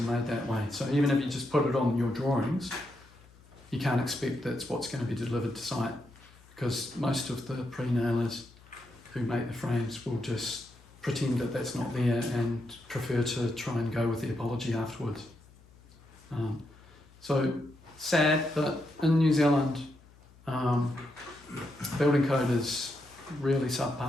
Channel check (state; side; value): noise; left; hum, 25 dB below the sound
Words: made that way. So even if you just put it on your drawings, you can't expect that's what's going to be delivered to site, because most of the pre-nailers who make the frames will just pretend that that's not there and prefer to try and go with the apology afterwards. So sad, but in New Zealand, building code is really